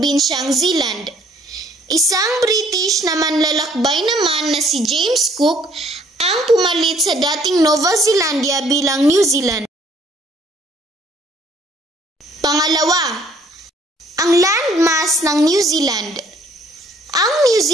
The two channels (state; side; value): normal; both; correlation 0.61